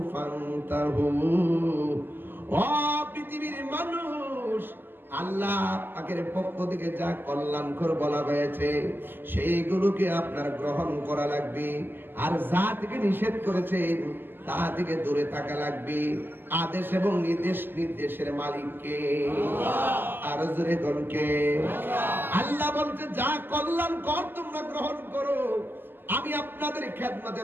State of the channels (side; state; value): left; late; 0.096 ms